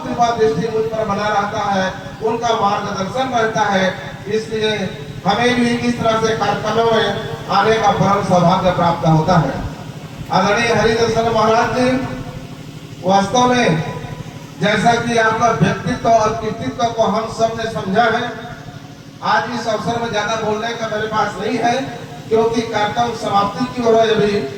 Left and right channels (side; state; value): both; identical; correlation 1.00